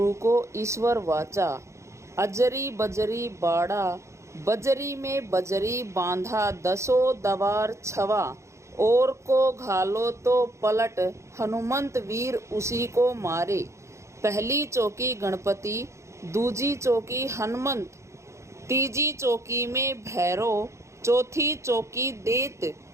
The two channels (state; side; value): late; left; 0.14 ms